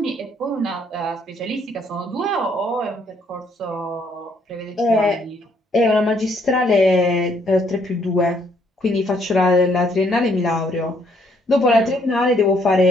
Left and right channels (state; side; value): normal; both; correlation 0.68